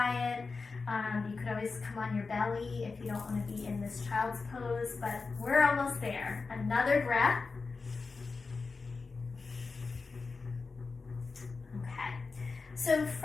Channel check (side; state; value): right; quieter; 4.3 dB